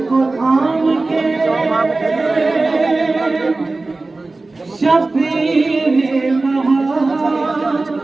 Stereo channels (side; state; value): left; quieter; 3.3 dB